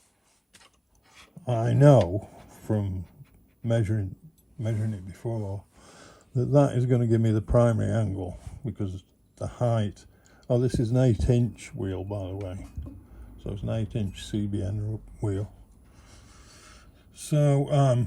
I know from measuring it before that is going to give me the primary angle, because the height, oh, this is an 8-inch wheel, by the way, so it's an 8-inch CBN wheel. So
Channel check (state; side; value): identical; both; correlation 1.00